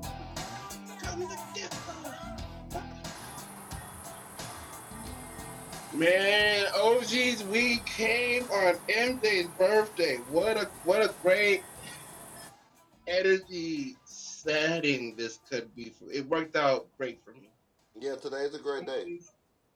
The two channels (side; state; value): both; identical; correlation 1.00